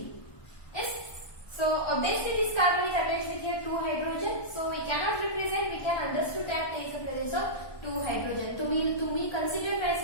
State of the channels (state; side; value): late; right; 1.2 ms